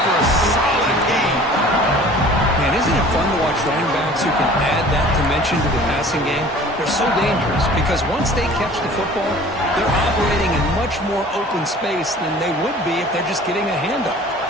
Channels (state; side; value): normal; both; correlation 0.47